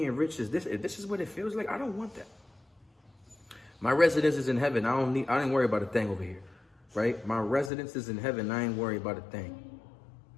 rich is this, if this is what it feels like, I don't want that. My residence is in heaven. I ain't worry about a thing over here, right? My residence is in heaven. I ain't worry about a thing.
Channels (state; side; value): drops out; right; at 7.7 s